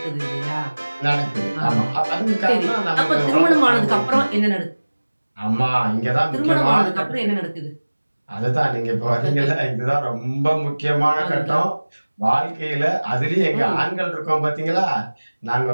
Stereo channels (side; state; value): both; inverted; correlation -1.00